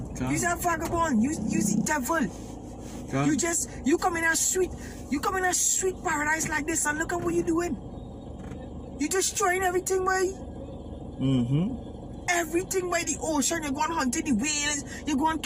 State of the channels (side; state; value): both; identical; correlation 1.00